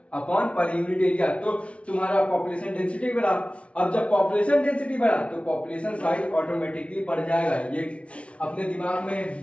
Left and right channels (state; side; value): late; right; 0.062 ms